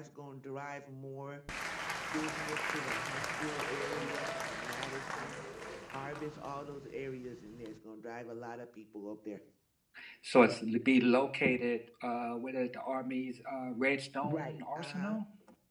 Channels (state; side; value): identical; both; correlation 1.00